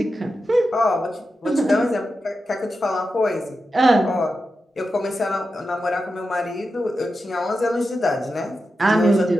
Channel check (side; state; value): both; normal; correlation 0.90